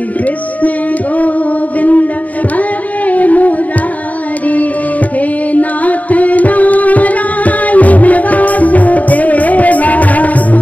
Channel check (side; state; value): right; late; 0.072 ms